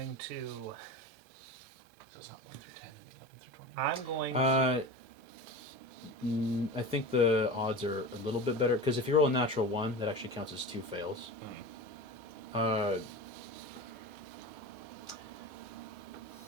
to. So it's not 1 through 10, 11 through 20. I'm going. I think the odds are a little bit better because if you roll a natural 1, that actually counts as 2 fails. Uh,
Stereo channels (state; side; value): normal; both; correlation 0.30